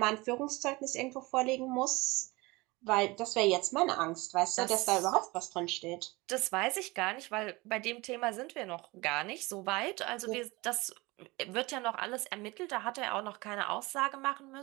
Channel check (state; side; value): quieter; left; 23.0 dB